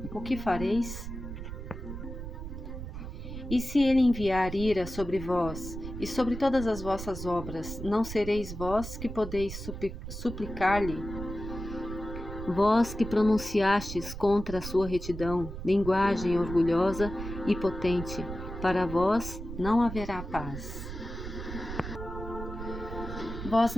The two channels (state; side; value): noise; right; rumble, 8 dB below the sound